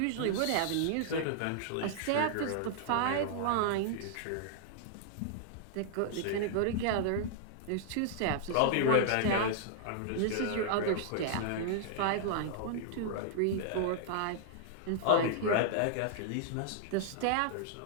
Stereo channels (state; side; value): different; both; correlation -0.01